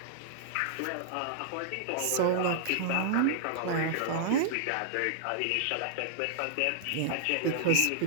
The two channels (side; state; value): both; different; correlation -0.01